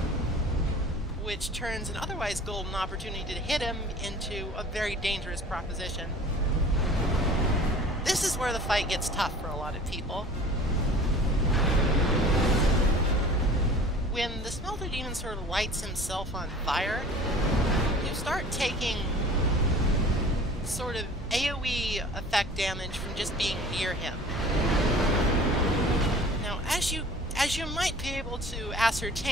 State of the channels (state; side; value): normal; both; correlation 0.45